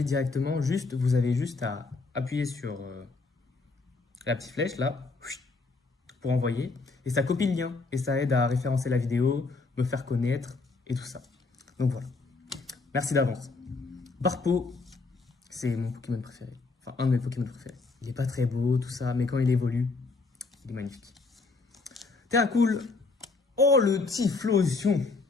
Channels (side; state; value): right; quieter; 3.9 dB